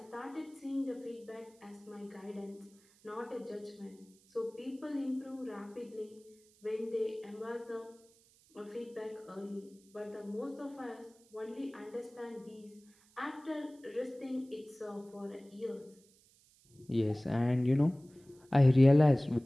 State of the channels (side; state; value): right; noise; hiss, 29 dB below the sound